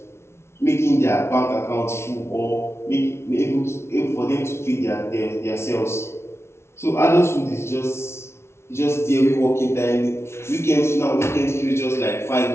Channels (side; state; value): right; late; 0.13 ms